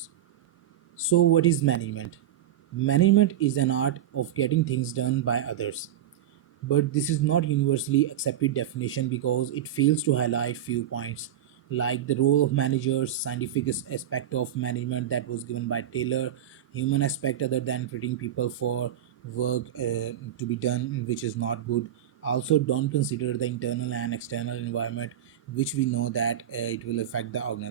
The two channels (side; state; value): left; quieter; 10.8 dB